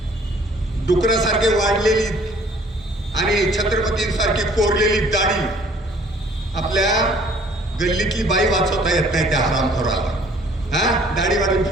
डुकरासारखे वाढलेली आणि छत्रपतींसारखी कोरलेली दाढी आपल्या गल्लीतली बाई वाचवता येत नाही त्या हरामखोराला. दाढी वाढून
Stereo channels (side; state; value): both; normal; correlation 0.56